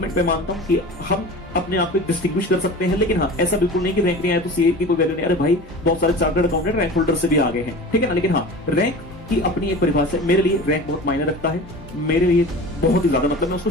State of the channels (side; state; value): both; normal; correlation 0.36